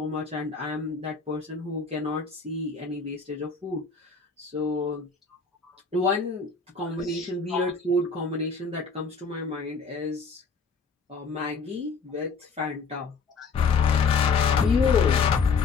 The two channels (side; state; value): right; quieter; 4.9 dB